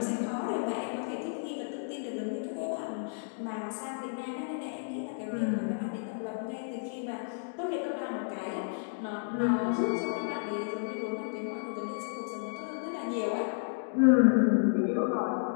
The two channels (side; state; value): right; silent; digital silence